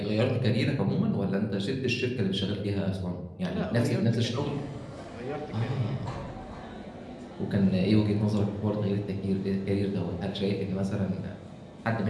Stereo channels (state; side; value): identical; both; correlation 1.00